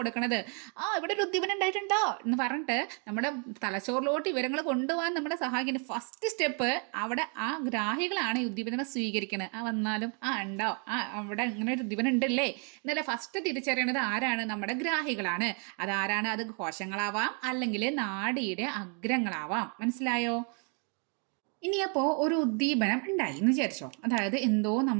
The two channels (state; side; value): quieter; left; 38.6 dB